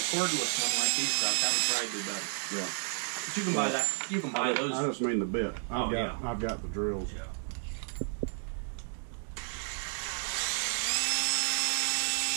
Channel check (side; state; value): left; silent; 57 dB below the other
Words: cordless one like these guys, that would probably do better. Yeah. But you can buy that. You can buy those. I just mean the bit. I've got the drills. Yeah.